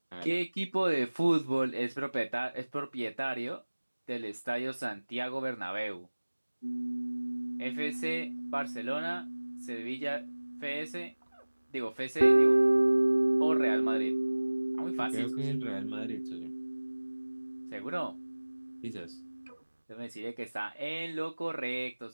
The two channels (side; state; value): both; inverted; correlation -1.00